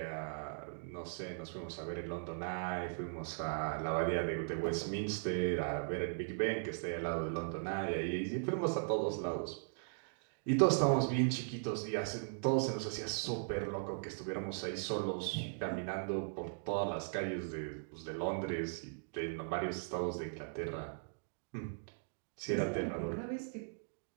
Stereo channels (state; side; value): silent; left; digital silence